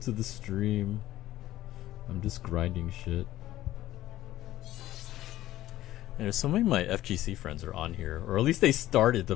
to the stream. I'm just grinding shit. And so many of my FGC friends are on here, or at least they started to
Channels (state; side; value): quieter; right; 14.7 dB